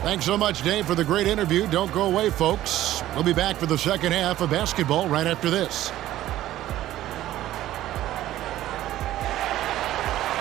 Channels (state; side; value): quieter; left; 14.1 dB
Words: Thanks so much, Dave, for the great interview. Don't go away, folks. We'll be back for the second half of basketball right after this.